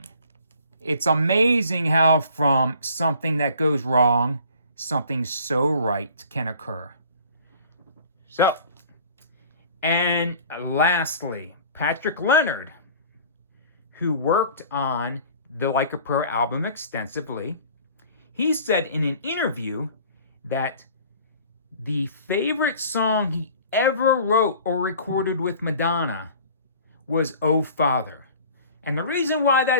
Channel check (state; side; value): inverted; both; correlation -0.48